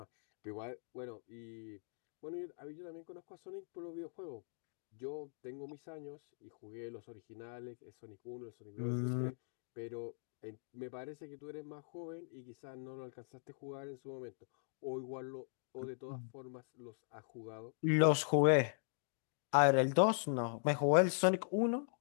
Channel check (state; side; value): silent; right; digital silence